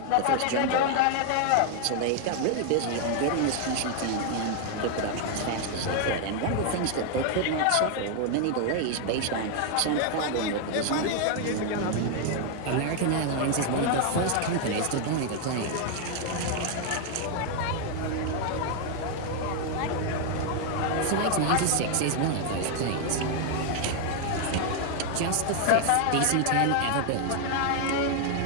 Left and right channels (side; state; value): both; different; correlation 0.00